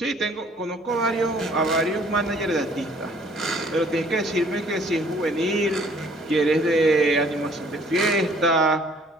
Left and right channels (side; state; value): both; normal; correlation 0.58